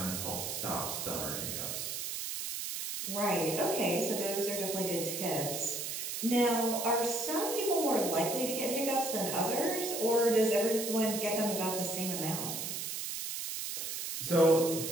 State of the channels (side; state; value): right; noise; hiss, 4 dB below the sound